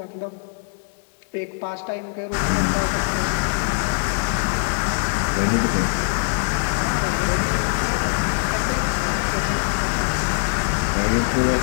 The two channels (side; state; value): right; silent; digital silence